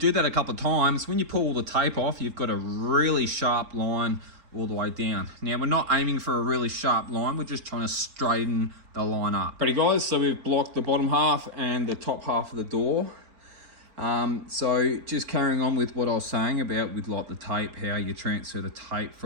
that a couple of times. When you pull all the tape off, you've got a really sharp line all the way down. Now, we're not aiming for a really sharp line, we're just trying to straighten the line up. Ready guys, so we've blocked the bottom half and the top half of the door. So just carrying on with what I was saying about with like the tape, how you transfer the tape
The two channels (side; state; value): left; late; 4.4 ms